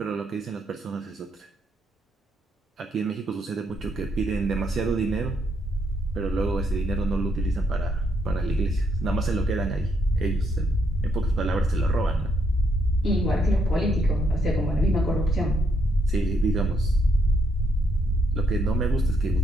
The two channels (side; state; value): both; normal; correlation 0.75